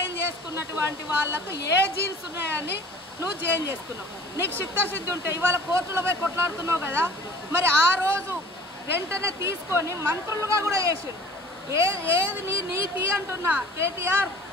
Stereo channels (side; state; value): both; normal; correlation 0.46